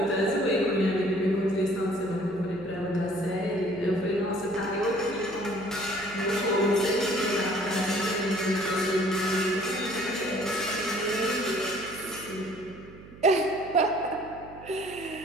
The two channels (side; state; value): right; noise; hum, 18 dB below the sound